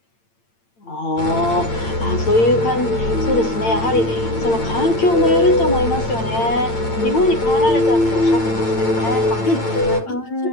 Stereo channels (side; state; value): right; late; 8.8 ms